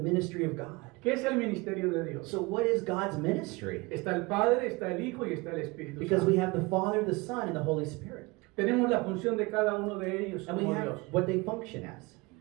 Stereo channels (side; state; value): left; quieter; 24.6 dB